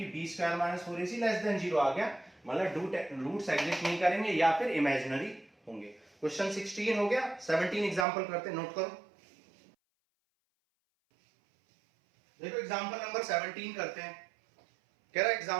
b square minus 4ac less than 0 आ गया, मतलब roots exist नहीं करेंगे या फिर इमेजिनरी होंगे। क्वेश्चन 16 हो गया। 17 एग्जांपल करते हैं, नोट करो। देखो एग्जांपल नंबर 17 करते हैं। कह रहा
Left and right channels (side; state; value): left; drops out; at 8.1 s